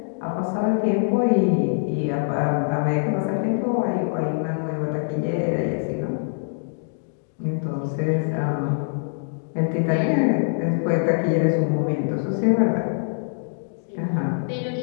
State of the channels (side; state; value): right; silent; digital silence